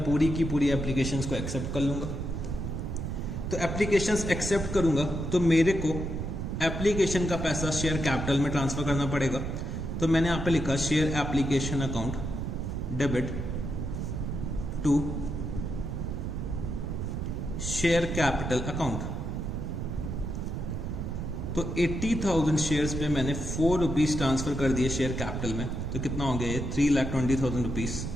पूरी की पूरी एप्लीकेशंस को एक्सेप्ट कर लूंगा। तो एप्लीकेशंस एक्सेप्ट करूंगा तो मेरे को एप्लीकेशन का पैसा शेयर कैपिटल में ट्रांसफर करना पड़ेगा। तो मैंने यहाँ पे लिखा share application account debit to share capital account. तो 80,000 शेयर्स पे मैंने 4 रुपीज ट्रांसफर कर दिए शेयर कैपिटल में, तो कितना हो गया ये 3,20,000 रुपीज।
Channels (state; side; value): noise; right; rumble, 3 dB below the sound